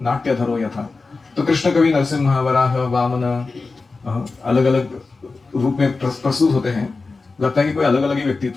नाट्य धरो यथा। तो कृष्ण कवि नरसिम्हा, वराह, वामन अलग अलग रूप में प्रस्तुत होते हैं। लगता है कि कोई अलग अलग ही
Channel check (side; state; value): right; quieter; 3.9 dB